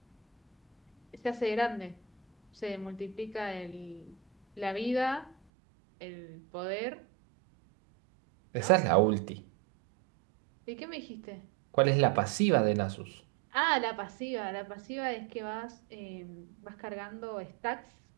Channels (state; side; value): drops out; left; at 5.4 s